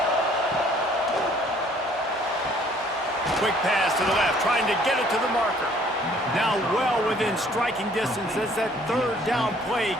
Quick pass to the left, trying to get it to the marker. Now well within striking distance as that 3rd down play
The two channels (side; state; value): both; normal; correlation 0.59